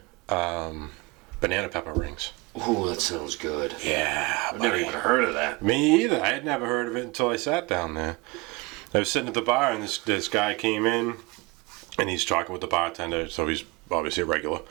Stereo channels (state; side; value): quieter; left; 25.3 dB